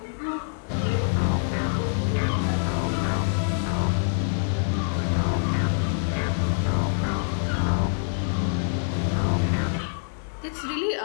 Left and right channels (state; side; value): silent; right; digital silence